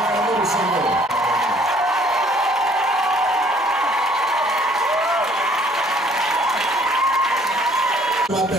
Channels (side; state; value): both; normal; correlation 0.59